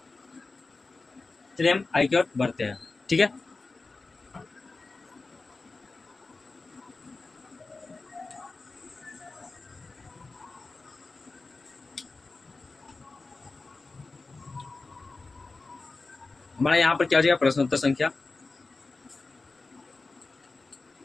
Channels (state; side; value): quieter; right; 3.7 dB